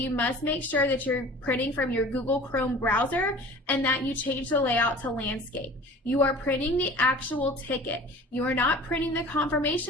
must make sure that you're printing from your Google Chrome browser and that you change the layout to landscape. You are printing the actual ticket. You are not printing the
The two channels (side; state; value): both; normal; correlation 0.42